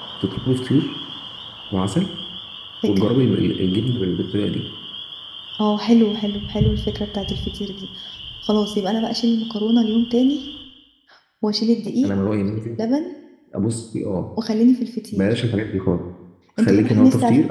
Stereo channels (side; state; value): both; identical; correlation 1.00